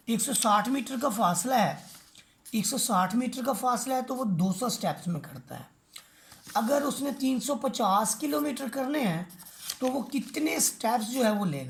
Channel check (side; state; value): both; identical; correlation 1.00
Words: 160 मीटर का फासला है, 160 मीटर का फासला है तो वो 200 स्टेप्स में करता है। अगर उसने 350 किलोमीटर करने हैं तो वो कितने स्टेप्स जो है वो